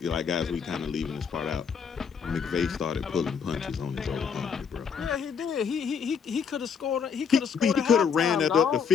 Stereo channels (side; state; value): right; quieter; 6.5 dB